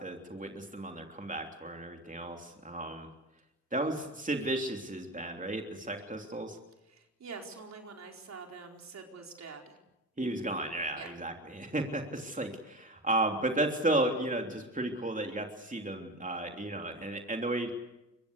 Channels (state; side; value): normal; both; correlation 0.27